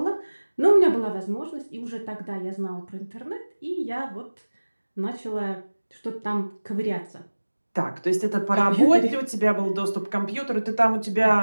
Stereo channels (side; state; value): both; inverted; correlation -1.00